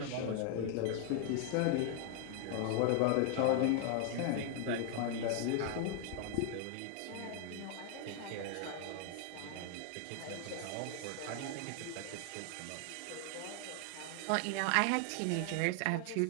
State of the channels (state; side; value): different; both; correlation 0.00